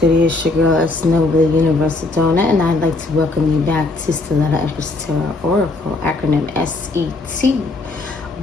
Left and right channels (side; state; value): right; quieter; 3.3 dB